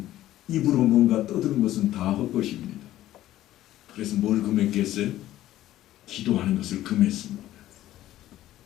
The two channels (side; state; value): right; quieter; 14.0 dB